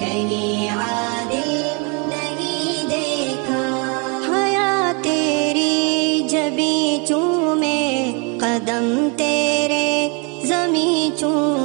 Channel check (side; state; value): left; quieter; 33.4 dB